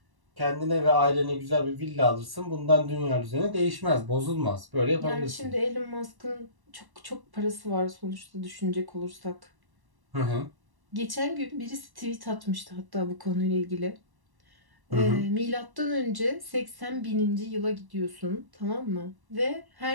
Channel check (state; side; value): late; left; 1.1 ms